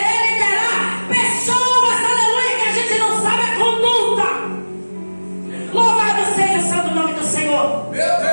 liderar pessoas, aleluia, que a gente não sabe a conduta? Louvado seja o santo nome do Senhor. Meu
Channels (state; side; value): inverted; both; correlation -1.00